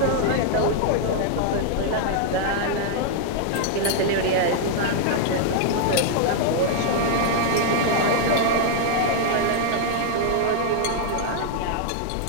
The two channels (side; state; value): both; different; correlation -0.01